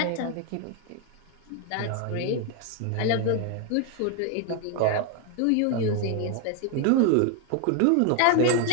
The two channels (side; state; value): both; different; correlation 0.01